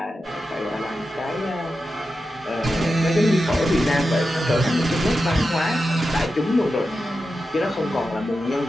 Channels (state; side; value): normal; both; correlation 0.90